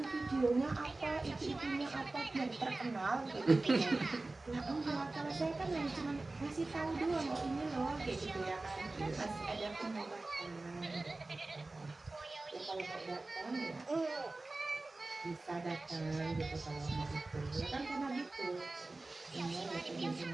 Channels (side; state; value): left; quieter; 3.1 dB